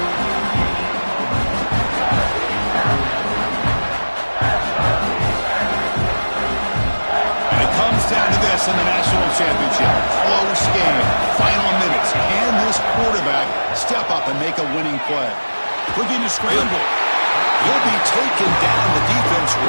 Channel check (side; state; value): both; inverted; correlation -1.00